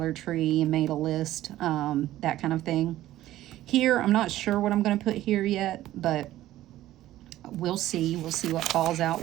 Tree, and made a list, that kind of thing. Here, I'm not sure what I'm going to put here yet, but we'll see. We'll see what falls out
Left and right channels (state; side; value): quieter; left; 14.4 dB